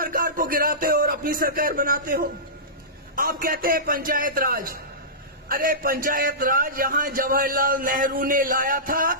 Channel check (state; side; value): normal; both; correlation -0.19